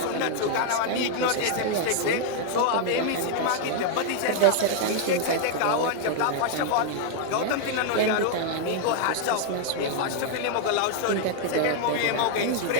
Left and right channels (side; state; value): both; different; correlation 0.00